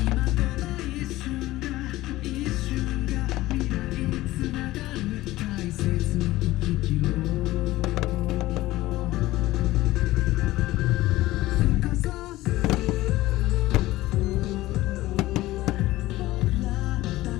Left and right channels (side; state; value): right; quieter; 17.1 dB